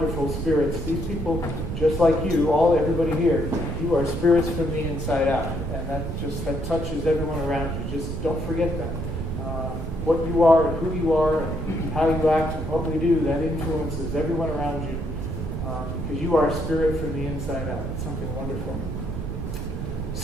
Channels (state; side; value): noise; right; rumble, 5 dB below the sound